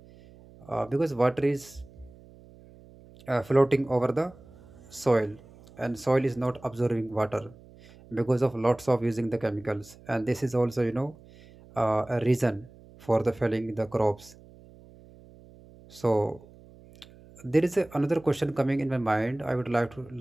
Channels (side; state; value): right; noise; hum, 23 dB below the sound